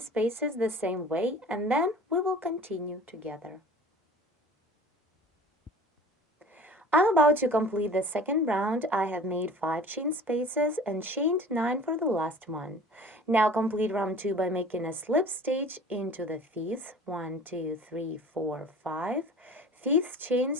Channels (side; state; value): both; normal; correlation 0.44